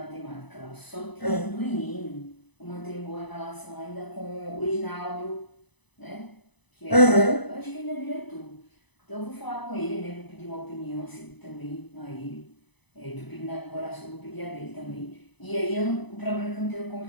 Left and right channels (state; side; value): late; right; 1.0 ms